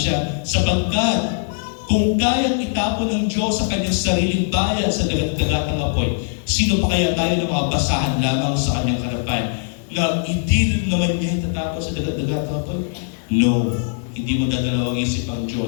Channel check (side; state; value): right; silent; digital silence